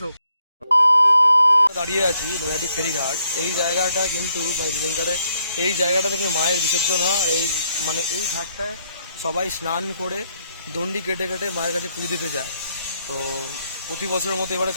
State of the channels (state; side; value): inverted; both; correlation -0.73